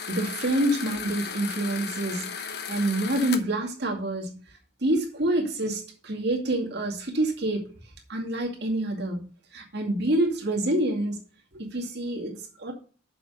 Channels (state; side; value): normal; both; correlation 0.48